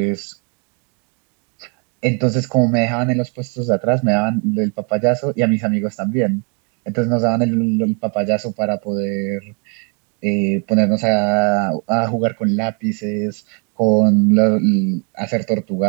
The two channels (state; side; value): quieter; left; 36.7 dB